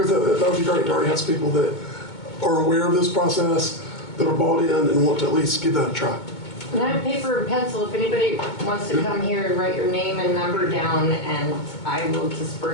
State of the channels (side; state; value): right; late; 2.2 ms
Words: that would be great to already have some people that are aware of this process, that are bought in and want to at least give that a try. And I have paper and pencil if anybody wants to come here and write your name and number down, and I will